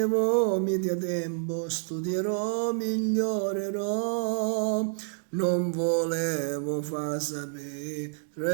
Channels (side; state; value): left; silent; digital silence